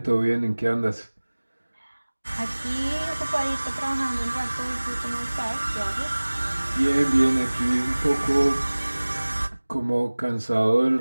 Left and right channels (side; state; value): both; inverted; correlation -1.00